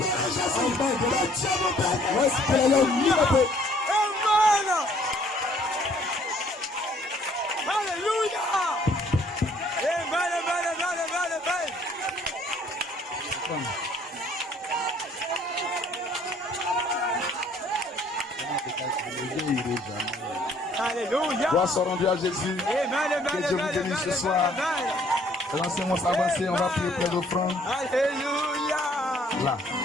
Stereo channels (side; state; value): both; normal; correlation 0.61